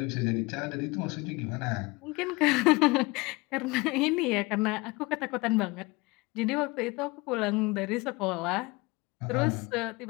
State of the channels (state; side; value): quieter; right; 24.3 dB